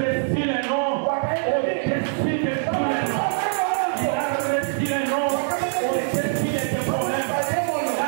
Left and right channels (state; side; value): silent; left; digital silence